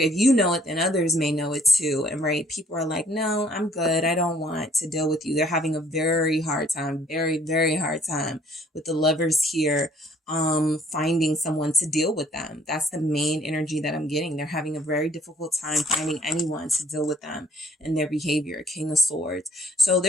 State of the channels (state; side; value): normal; both; correlation 0.61